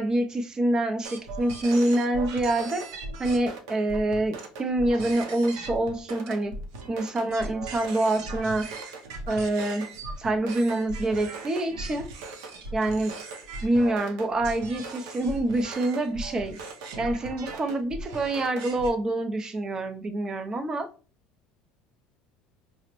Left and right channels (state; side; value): normal; both; correlation 0.83